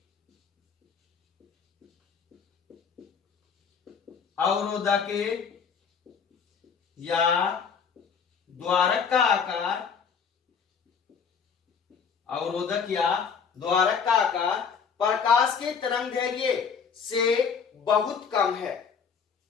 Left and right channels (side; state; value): right; quieter; 6.3 dB